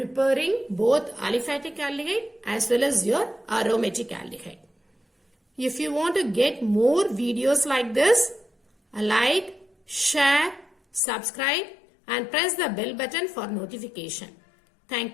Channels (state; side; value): drops out; right; at 11.0 s